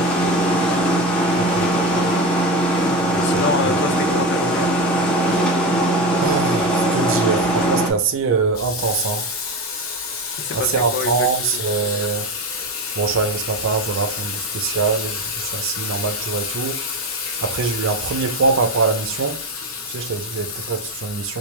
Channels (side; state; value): both; normal; correlation 0.19